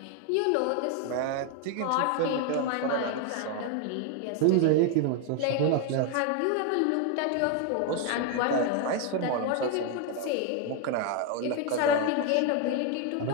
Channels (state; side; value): different; both; correlation 0.01